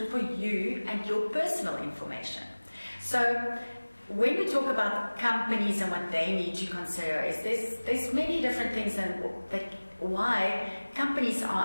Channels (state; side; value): inverted; both; correlation -1.00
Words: for you and your personal information. So when we talk about companies and what they need to consider, is there's many different things and why companies